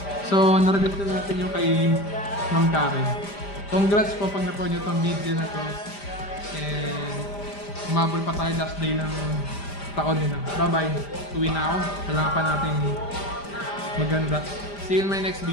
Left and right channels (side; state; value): right; late; 5.0 ms